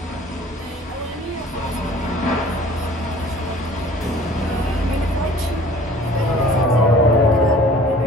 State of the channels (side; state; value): both; normal; correlation 0.50